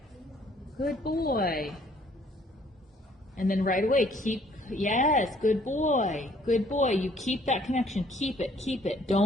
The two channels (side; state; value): both; normal; correlation 0.61